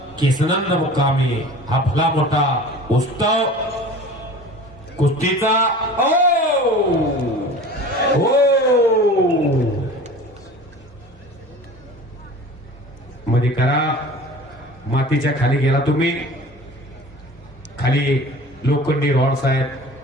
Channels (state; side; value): normal; both; correlation 0.40